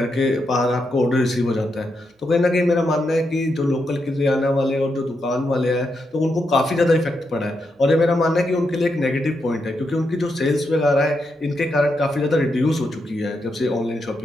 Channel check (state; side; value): normal; both; correlation 0.83